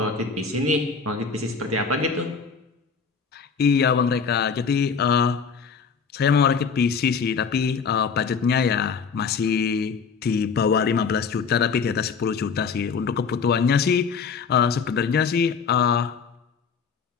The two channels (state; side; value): quieter; right; 5.8 dB